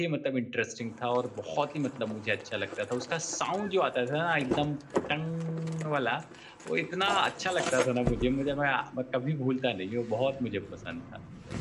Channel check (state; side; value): identical; both; correlation 1.00